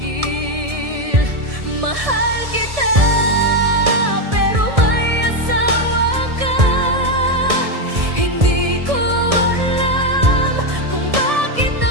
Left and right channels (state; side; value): late; left; 1.7 ms